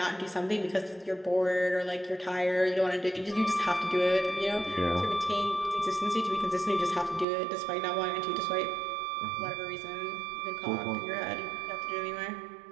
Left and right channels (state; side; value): drops out; left; at 7.2 s